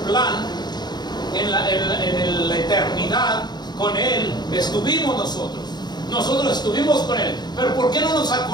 en la eternidad, con Él estuvimos nosotros. Nosotros estuvimos con Él. Pero ¿por qué no nos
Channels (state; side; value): late; right; 0.20 ms